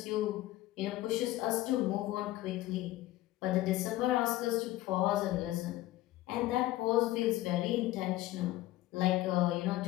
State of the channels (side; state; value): right; quieter; 16.3 dB